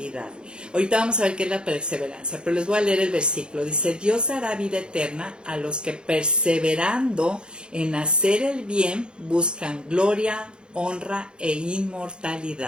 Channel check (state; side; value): late; left; 0.051 ms